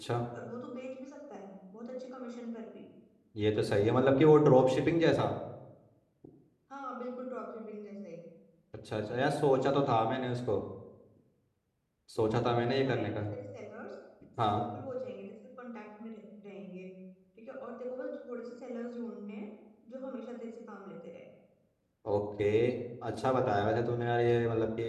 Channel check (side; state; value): both; identical; correlation 1.00